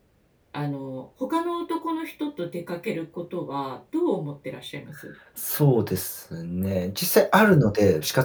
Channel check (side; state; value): both; identical; correlation 1.00